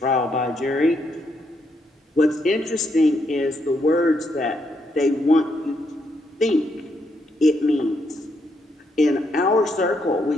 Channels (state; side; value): normal; both; correlation 0.77